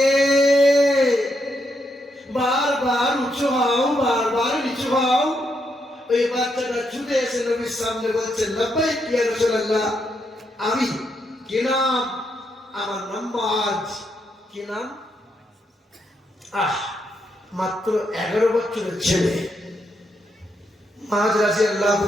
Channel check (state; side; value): normal; both; correlation 0.79